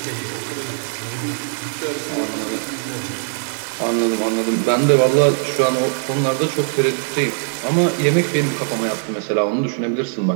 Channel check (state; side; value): silent; left; digital silence